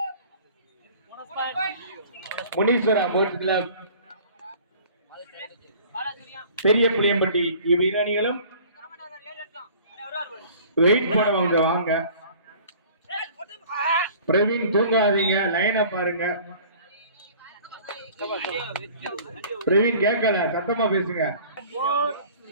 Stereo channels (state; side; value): inverted; both; correlation -0.49